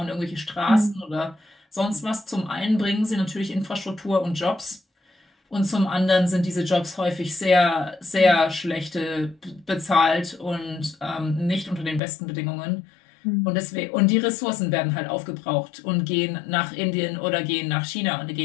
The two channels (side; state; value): right; drops out; at 12.0 s